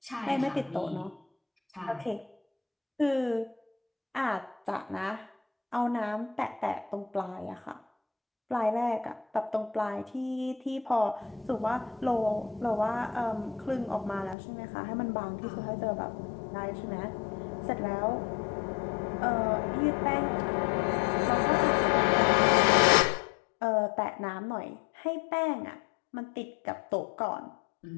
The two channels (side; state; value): right; drops out; at 14.4 s